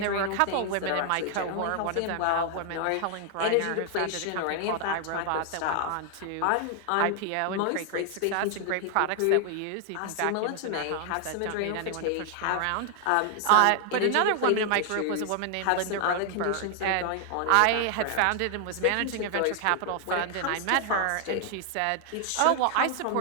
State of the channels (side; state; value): both; different; correlation 0.00